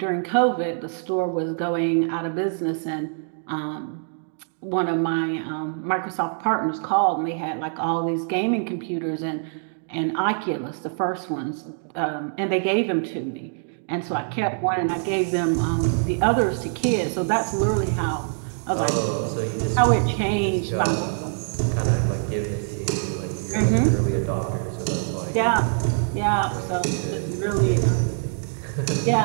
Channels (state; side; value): silent; left; digital silence